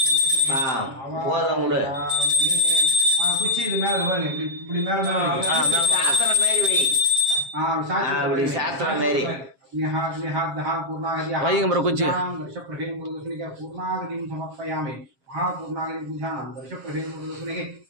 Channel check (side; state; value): left; late; 7.4 ms